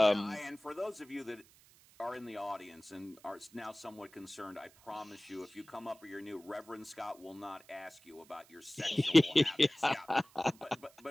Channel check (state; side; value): noise; right; hiss, 26 dB below the sound